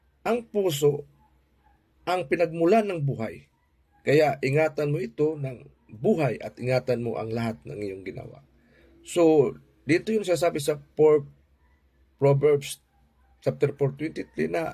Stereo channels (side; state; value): both; identical; correlation 1.00